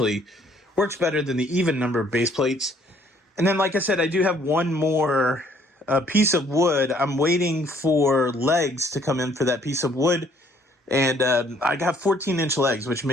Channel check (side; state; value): both; normal; correlation 0.62